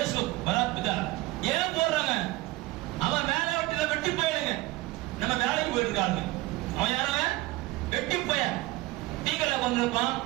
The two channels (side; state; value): left; quieter; 19.5 dB